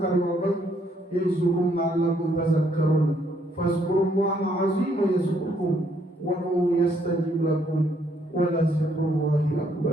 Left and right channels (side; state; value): both; normal; correlation 0.70